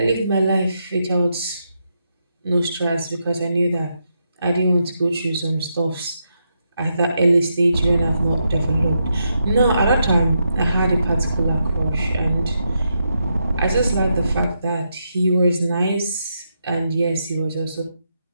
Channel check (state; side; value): inverted; both; correlation -0.82